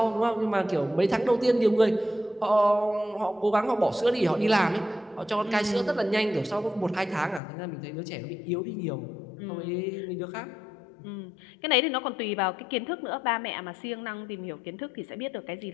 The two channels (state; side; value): drops out; right; at 7.4 s